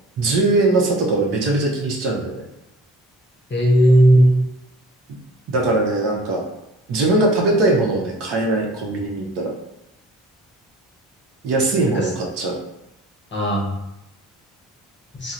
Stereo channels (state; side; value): normal; both; correlation 0.49